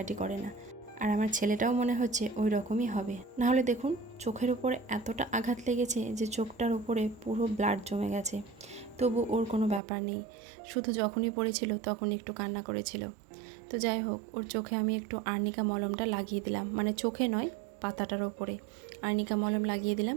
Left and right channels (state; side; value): drops out; left; at 9.8 s